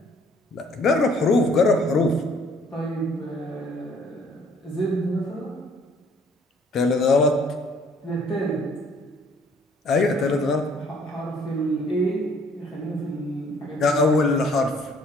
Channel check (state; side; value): normal; both; correlation 0.60